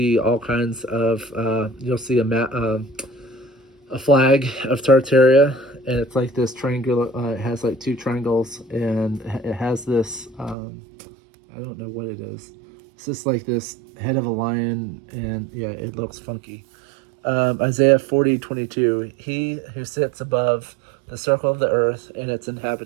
all kinds of. You'll see a flag of Tartaria, and it's like this triangular. It has like two triangles, and it has this. I don't know what it is. It's just like this head of a lion, and yeah, it looks funky. Isaiah 40:22. He who sits above the circle of the earth and its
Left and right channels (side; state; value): left; drops out; at 10.6 s